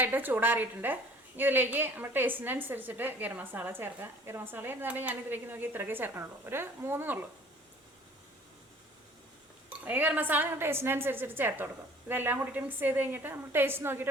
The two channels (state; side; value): normal; both; correlation 0.51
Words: ചൂടാറിയിട്ടുണ്ട്. ഇതിലേക്ക് നമ്മൾ ടേസ്റ്റിനനുസരിച്ചിട്ട് ഗരം മസാല ചേർക്കാം. ഗരം മസാല എന്നാലും ഞാൻ ഇതിലേക്ക് നോക്കി ഇത്രയൊക്കെ ചേർക്കണുള്ളൂ. ഒരു 3 ഉള്ളൂ. ഈ ഗരം മസാല നിങ്ങൾ ടേസ്റ്റിനനുസരിച്ചിട്ട് ചേർത്ത് കൊടുക്കും. ഇതെല്ലാം കൂടിയിട്ട് മിക്സ് ചെയ്ത് കഴിഞ്ഞിട്ട് നമ്മൾ ടേസ്റ്റ് നോക്കിയിട്ട്